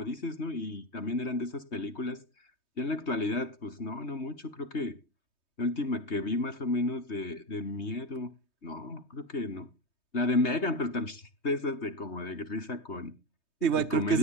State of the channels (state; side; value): late; right; 3.2 ms